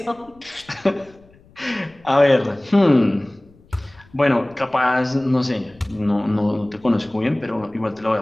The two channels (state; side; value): noise; left; rumble, 28 dB below the sound